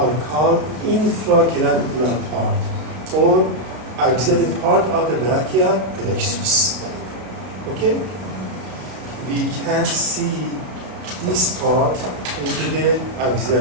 called infraclavicular part or axillary part of the brachial plexus. Okay? We can see this part into the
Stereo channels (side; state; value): left; late; 32 ms